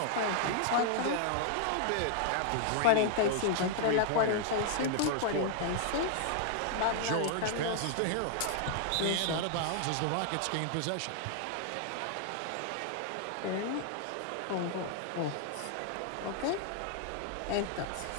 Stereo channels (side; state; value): both; different; correlation 0.00